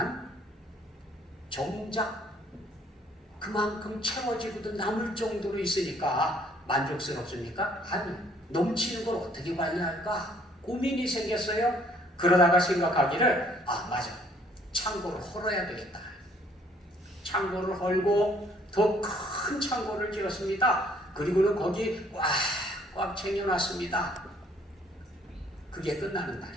정작 그만큼 채워지고도 남을 정도로 있으니까 만족스럽습니까? 아니, 넘치는 걸 어떻게 관리할까? 고민이 생겼어요. 그러다가 생각하기를 맞아, 창고를 헐어야 되겠다. 창고를 헐고 더 큰 창고를 지었습니다. 그리고는 거기 꽉 챙겨놨습니다. 그게 끝나는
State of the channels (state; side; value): normal; both; correlation 0.62